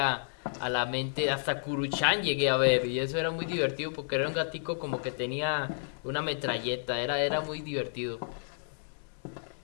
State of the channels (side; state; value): right; silent; digital silence